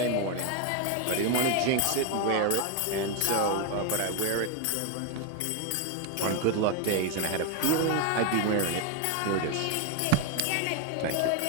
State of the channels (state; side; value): different; both; correlation 0.02